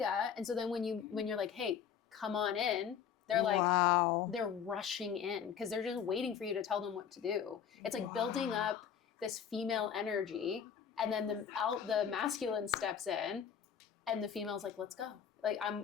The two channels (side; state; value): right; quieter; 8.0 dB